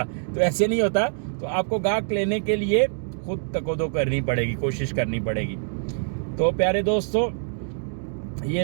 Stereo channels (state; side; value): silent; left; digital silence